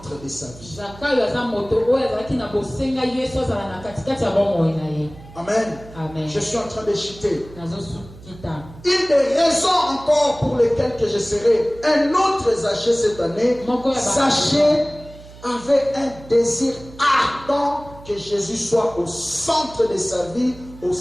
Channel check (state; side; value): noise; right; hum, 19 dB below the sound